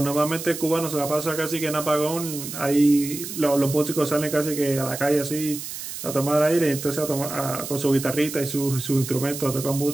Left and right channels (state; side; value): noise; right; hiss, 8 dB below the sound